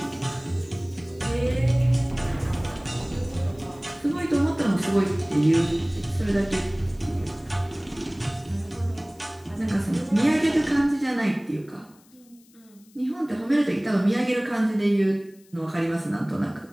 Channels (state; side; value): noise; left; hiss, 29 dB below the sound